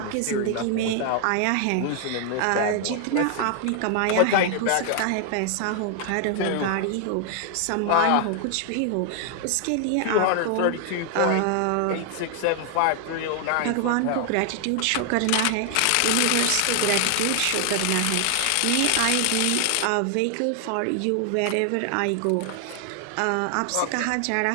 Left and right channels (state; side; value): different; both; correlation 0.00